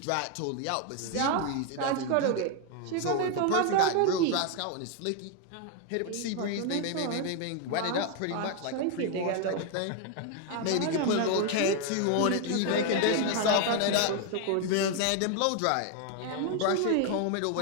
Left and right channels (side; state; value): both; different; correlation 0.01